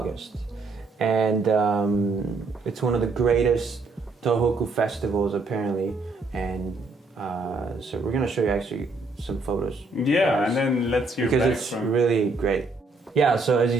And it's one of the greatest Tohoku festivals, apparently. And so we're going to show you actually some photos. Yeah, and then let's hear because back it's from... really great. Yeah, so as you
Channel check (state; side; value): quieter; left; 3.5 dB